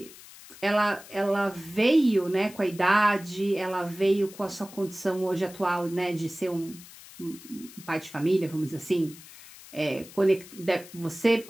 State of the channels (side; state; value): left; noise; hiss, 19 dB below the sound